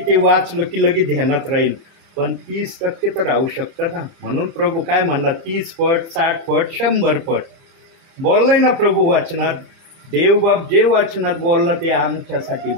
वाचलं की लगेच ध्यानात राहील. पण 30% तर राहू शकतं ना. म्हणून प्रभू काय म्हणला, 30 पट, 60 पट, 100 पट बोललाय ना प्रभू वाचनात. देवबाप जे वाचनात बोलला ते आमच्यासाठी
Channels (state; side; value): late; left; 30 ms